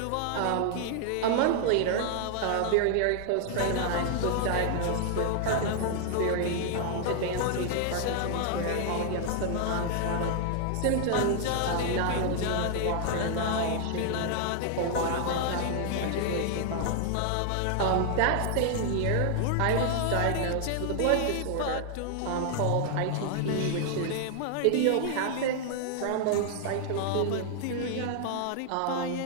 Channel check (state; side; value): different; both; correlation 0.00